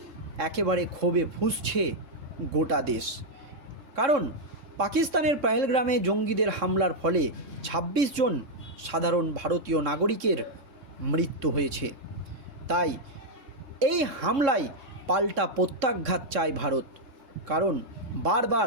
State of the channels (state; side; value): late; left; 3.6 ms